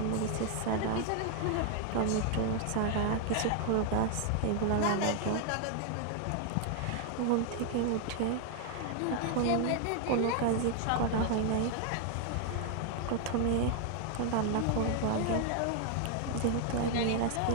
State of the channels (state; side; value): different; both; correlation 0.00